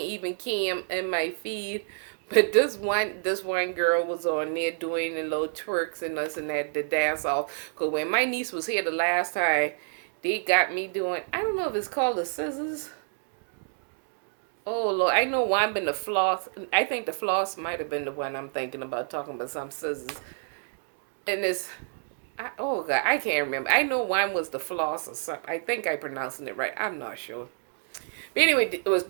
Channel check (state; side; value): silent; left; digital silence